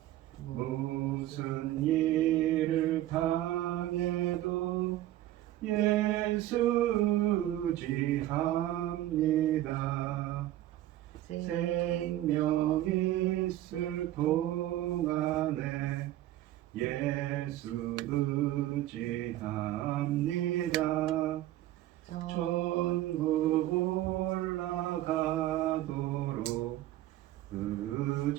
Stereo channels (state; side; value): quieter; left; 14.3 dB